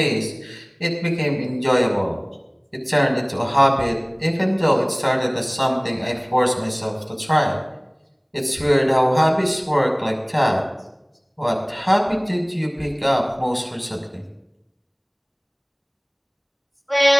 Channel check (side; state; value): both; identical; correlation 1.00